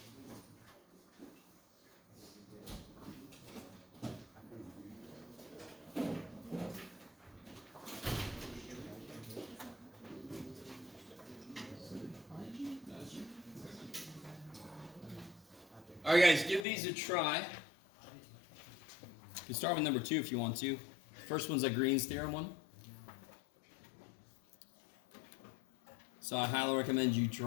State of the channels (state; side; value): drops out; right; at 16.7 s